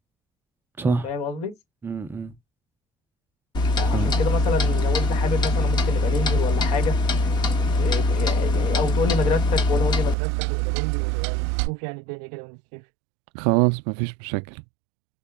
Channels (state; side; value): drops out; left; at 10.2 s